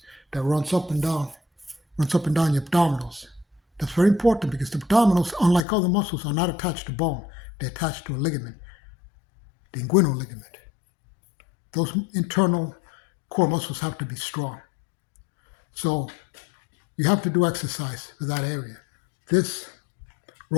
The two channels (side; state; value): right; drops out; at 5.7 s